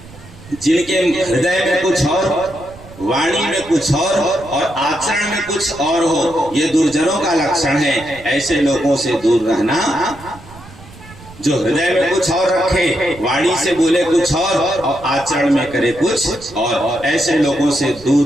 जिनके हृदय में कुछ और, वाणी में कुछ और आचरण में कुछ और हो, ये दुर्जनों का लक्षण है। ऐसे लोगों से दूर रहना। जो हृदय में कुछ और रखे, वाणी से बोले कुछ और आचरण में करे कुछ और, ऐसे लोगों से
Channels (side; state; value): right; noise; rumble, 20 dB below the sound